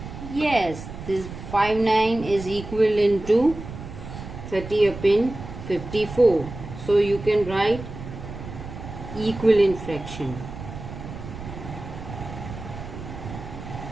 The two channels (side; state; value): right; noise; rumble, 11 dB below the sound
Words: Yes, this 5 9 is equivalent to 30 upon 54. So you can write equivalent fraction.